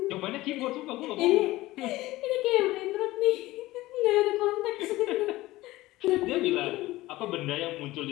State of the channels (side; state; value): right; quieter; 17.9 dB